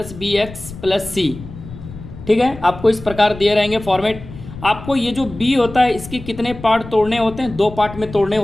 bx + c, ठीक है। आपको इस प्रकार दिए रहेंगे फॉर्मेट। आपको ये जो b होता है इसके कितने पार्ट तोड़ने होते हैं? 2 पार्ट में तोड़ने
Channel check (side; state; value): left; noise; rumble, 14 dB below the sound